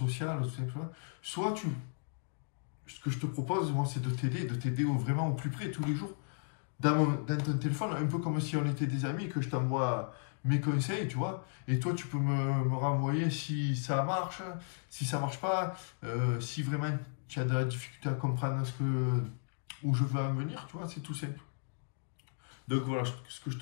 tout simplement. Soit ce que je te propose, moi, c'est de t'aider vraiment au plus près, tous les jours, dans ton téléphone, un peu comme si on était des amis, que je t'envoie mes conseils, tu vois, et toi, tu peux me renvoyer si ça marche, si ça marche pas, si vraiment tu as de la difficulté à comprendre où je veux en venir, tu vois, c'est tout simple. Donc voilà, ce que je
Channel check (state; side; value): silent; right; digital silence